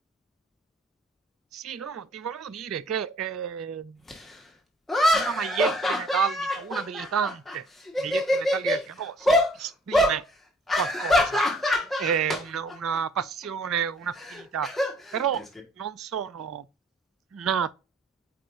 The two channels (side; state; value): both; normal; correlation 0.58